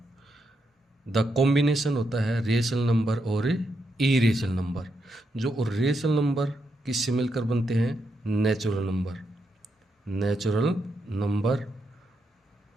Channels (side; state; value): both; normal; correlation 0.82